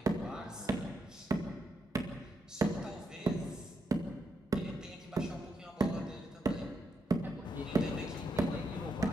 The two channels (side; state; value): both; normal; correlation 0.81